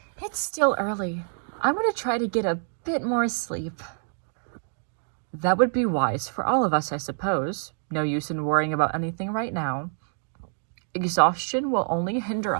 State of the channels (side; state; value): left; silent; digital silence